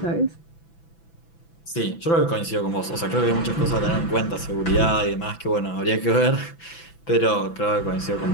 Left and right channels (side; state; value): right; late; 6.0 ms